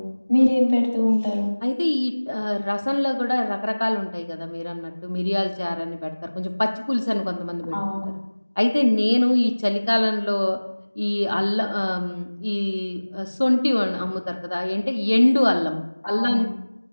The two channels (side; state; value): both; inverted; correlation -1.00